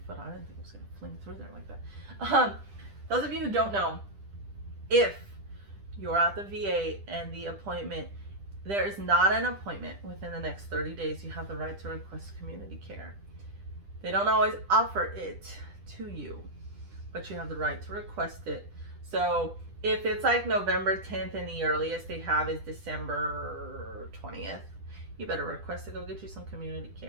foot. I didn't think it was going to fling through there like that. Those of you who don't know, if you're at the VA and the appointment, there is not an appointment within the next 30 days, you have the right to request community care. They don't always offer it to you, but you have the right to request it. So if it's like November 10th and the earliest they have is December 20th, you better request to go get you some community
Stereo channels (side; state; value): left; late; 10 ms